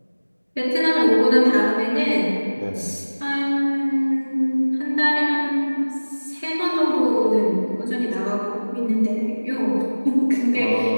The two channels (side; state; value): both; inverted; correlation -1.00